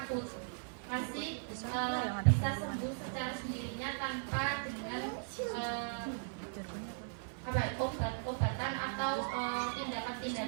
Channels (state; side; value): silent; left; digital silence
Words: masih bisa sembuh secara sendirinya tanpa dengan obat-obatan atau